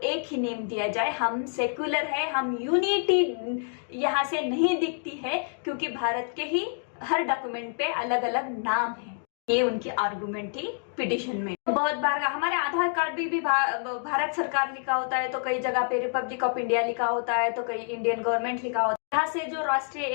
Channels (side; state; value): right; silent; 60 dB below the other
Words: ही नेम दिया जाए। हम सेक्युलर है, हम यूनिटी यहाँ से नहीं दिखती है क्योंकि भारत के ही हर डॉक्यूमेंट पे अलग अलग नाम है। ये उनकी आर्गुमेंट थी पिटीशन में। बहुत बार हमारे आधार कार्ड भी भारत सरकार लिखा होता है, तो कई जगह पे रिपब्लिक ऑफ इंडिया लिखा होता है, तो कई इंडियन गवर्नमेंट लिखा होता है। यहाँ से जो राष्ट्रीय